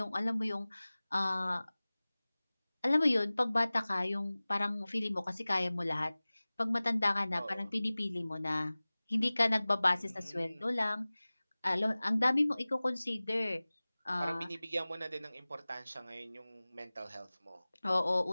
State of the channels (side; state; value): both; inverted; correlation -0.99